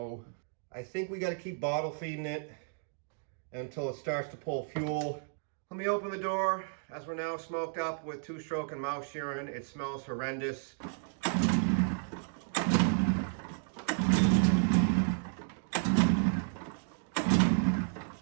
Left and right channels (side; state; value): left; silent; digital silence